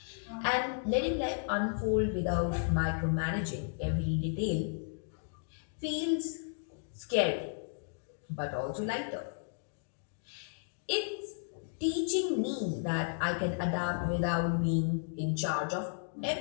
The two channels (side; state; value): right; silent; digital silence